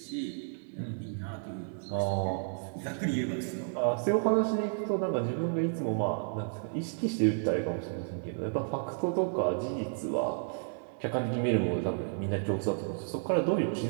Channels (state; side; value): silent; left; digital silence